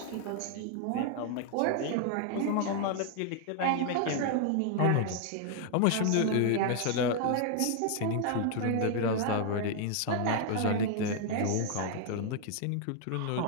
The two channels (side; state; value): both; different; correlation 0.00